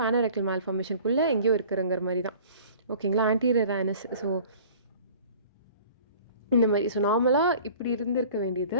anorectal மேல்ஃபர்மேஷனுக்குள்ளே எங்கேயோ இருக்கிறங்கிற மாதிரி தான். ஓகேங்களா, ஆன்டீரியர் ஆனஸ். ஸோ இந்த மாதிரி. ஸோ நார்மலாக இப்படி இருந்திருக்க வேண்டியது,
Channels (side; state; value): both; inverted; correlation -0.47